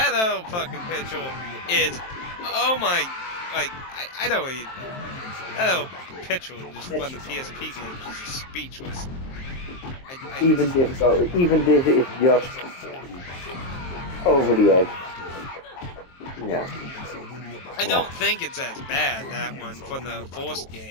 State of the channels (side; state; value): right; late; 23 ms